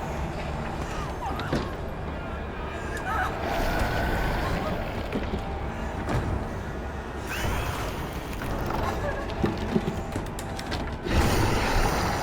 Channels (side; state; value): both; identical; correlation 1.00